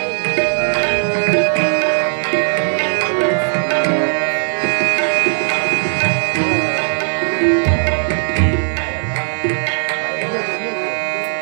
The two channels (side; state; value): left; silent; digital silence